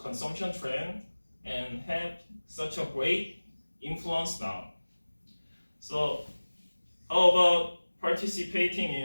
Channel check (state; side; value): inverted; both; correlation -1.00